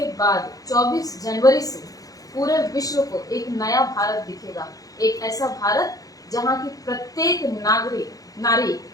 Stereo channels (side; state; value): right; late; 0.17 ms